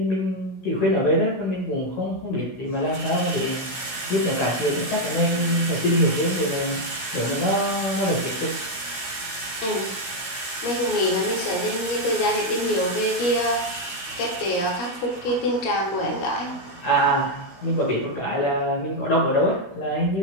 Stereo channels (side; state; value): right; late; 16 ms